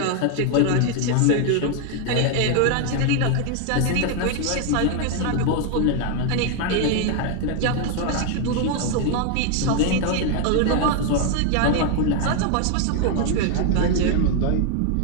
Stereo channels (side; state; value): both; different; correlation 0.01